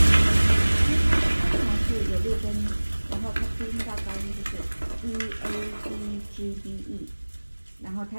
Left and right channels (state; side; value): inverted; both; correlation -1.00